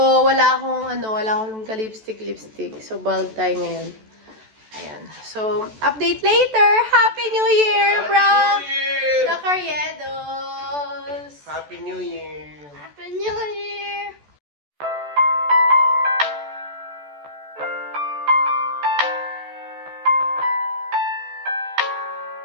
wala akong ka-lipstick. So, bald tayo ngayon. Ayan. So, update later! Happy New Year, bro! The Carriedos! Happy New Year! Happy New Year!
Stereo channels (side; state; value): left; late; 14 ms